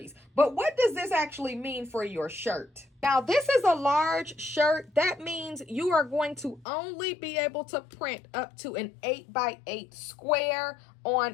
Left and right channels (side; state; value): right; drops out; at 6.7 s